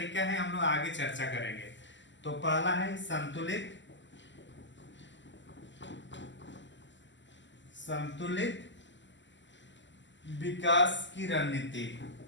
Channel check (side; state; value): right; late; 0.54 ms